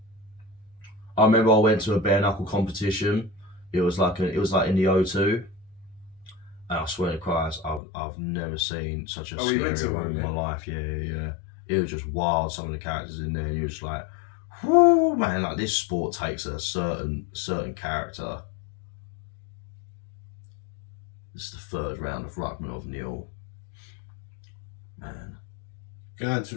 I remember I went to a Bare Knuckle competition. It was like in the O2. And I swear to Christ, I've never seen such a scary room in my life. Yeah. It was just wild. Some of the characters in there, and you were just like, whoo, man! Like, this sport takes a certain character. This is the third round of Rachmanov Neal. Man, Going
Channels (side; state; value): right; drops out; at 7.8 s